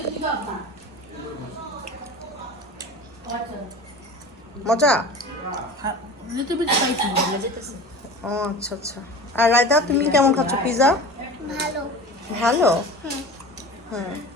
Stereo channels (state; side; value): normal; both; correlation 0.36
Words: মজা? Little bit spicy. ও আচ্ছা আচ্ছা। আর রায়তা তুমি কেমন খাচ্ছ পিৎজা? ভালো। ভালো? হুম।